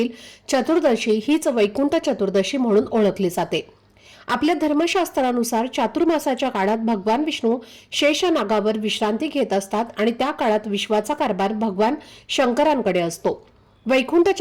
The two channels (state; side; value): identical; both; correlation 1.00